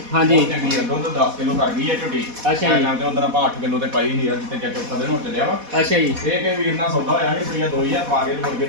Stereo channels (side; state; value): left; late; 4.1 ms